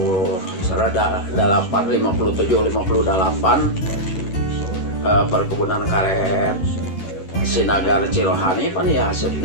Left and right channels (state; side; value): late; right; 11 ms